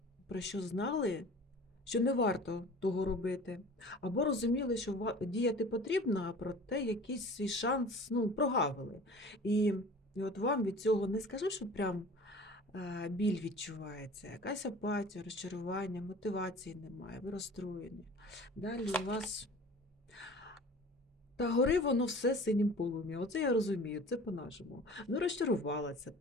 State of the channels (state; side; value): normal; both; correlation 0.43